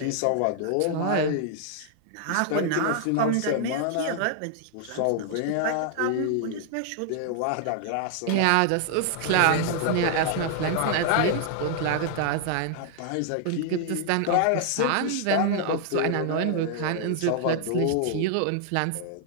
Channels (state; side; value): different; both; correlation 0.00